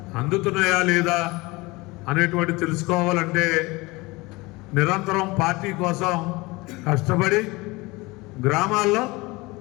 అందుతున్నాయా లేదా అనేటువంటి తెలుసుకోవాలంటే నిరంతరం పార్టీ కోసం కష్టపడి గ్రామాల్లో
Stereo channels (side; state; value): right; quieter; 23.0 dB